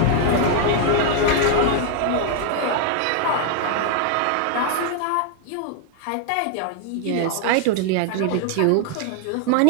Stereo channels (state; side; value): different; both; correlation 0.00